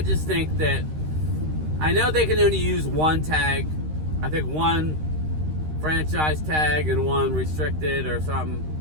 just think that, I know they can only use one tag. I think one franchise tag and one restricted or something.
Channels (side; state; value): left; late; 13 ms